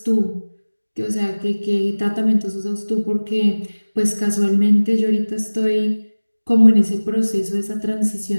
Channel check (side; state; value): both; inverted; correlation -1.00